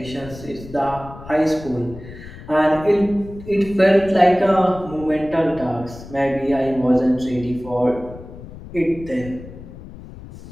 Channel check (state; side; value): noise; left; rumble, 15 dB below the sound